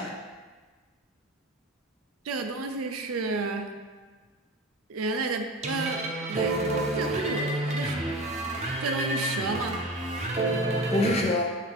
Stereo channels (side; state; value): both; normal; correlation 0.31